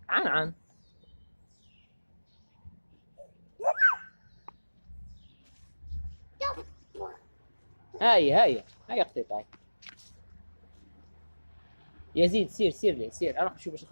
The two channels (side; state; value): both; inverted; correlation -1.00